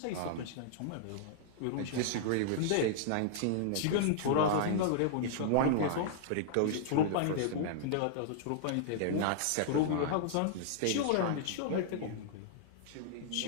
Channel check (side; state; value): both; different; correlation -0.01